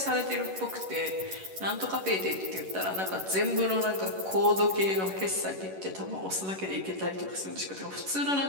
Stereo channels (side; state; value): left; late; 11 ms